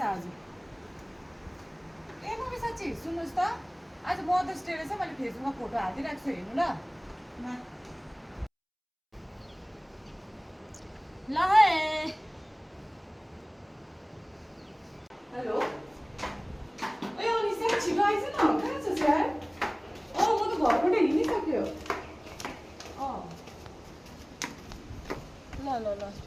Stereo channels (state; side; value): identical; both; correlation 1.00